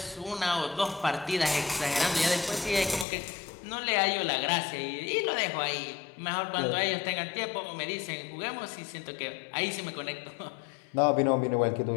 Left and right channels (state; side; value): drops out; right; at 3.1 s